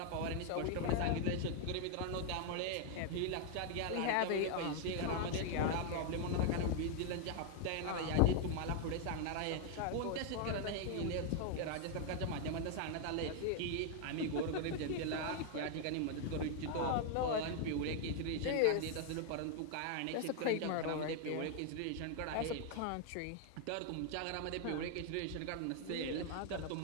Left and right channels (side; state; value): both; different; correlation 0.00